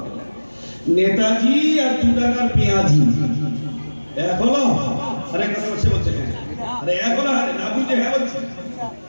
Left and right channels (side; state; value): both; inverted; correlation -1.00